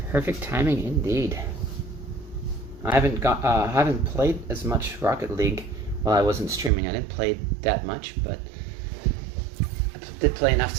Perfect timing indeed. I haven't played as much Rocket League while I wasn't streaming. I didn't play that much, but I did play enough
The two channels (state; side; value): drops out; left; at 6.7 s